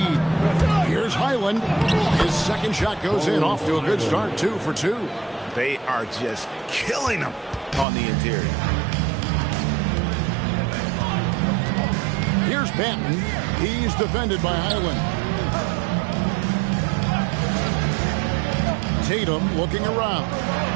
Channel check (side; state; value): left; drops out; at 7.9 s